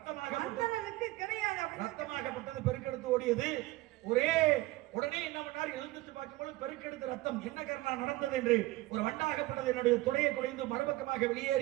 அந்தணனுக்கு கிடையாது. ரத்தமாகப்பட்டது பெருக்கெடுத்து ஓடியது. ஒரே உடனே என்ன பண்ணார்? எழுந்துட்டு பார்க்கும்போது பெருக்கெடுத்து ரத்தம் என்ன காரணம் நடந்தது என்று ஒரு வண்டாகப்பட்டது என்னுடைய துடையை குடைந்து மறுபக்கமாக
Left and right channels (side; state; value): left; quieter; 18.8 dB